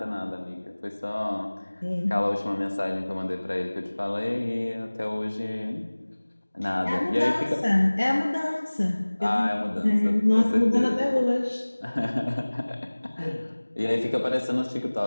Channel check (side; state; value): both; inverted; correlation -1.00